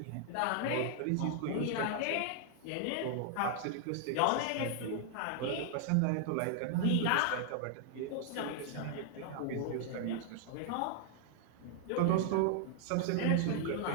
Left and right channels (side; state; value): both; different; correlation 0.00